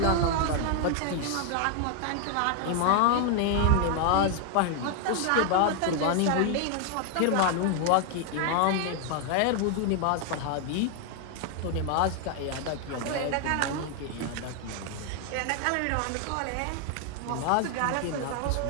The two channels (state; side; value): different; both; correlation 0.00